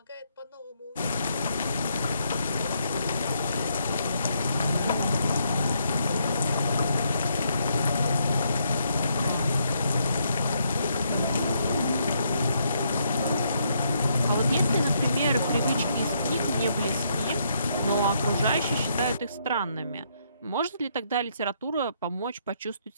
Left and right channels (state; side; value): inverted; both; correlation -0.74